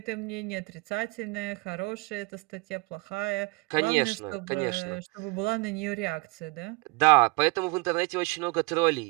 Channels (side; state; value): left; quieter; 27.3 dB